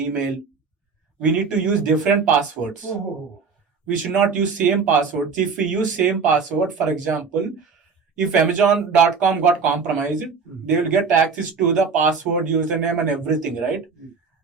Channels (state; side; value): quieter; left; 5.2 dB